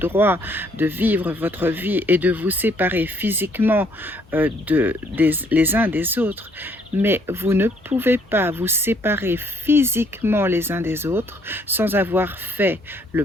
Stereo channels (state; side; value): normal; both; correlation 0.66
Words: de vivre votre vie et de vous séparer physiquement les uns des autres. mais vous ne pouvez pas vous séparer physiquement les uns des autres sans avoir fait